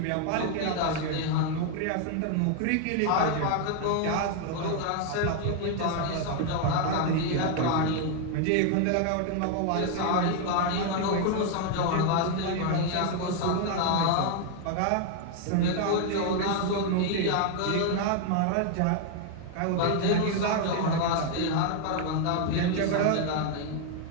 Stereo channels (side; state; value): both; different; correlation 0.00